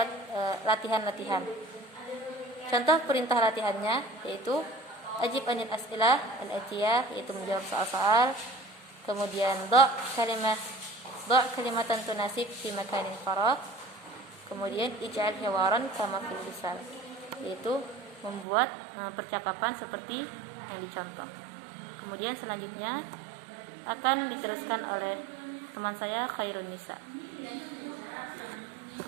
latihan-latihan. Contoh perintah latihannya yaitu ajib anil as'ilah al-atiyah, yaitu menjawab soal-soal. Kemudian kalimatan tunasib fi makanin faragh. Kemudian ij'al hiwaran kama fil misal, yaitu membuat percakapan seperti yang dicontoh. Kemudian selanjutnya akan diteruskan oleh teman saya Khairun Nisa.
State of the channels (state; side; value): drops out; left; at 18.4 s